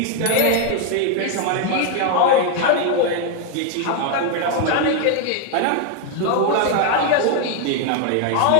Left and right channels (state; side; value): different; both; correlation 0.00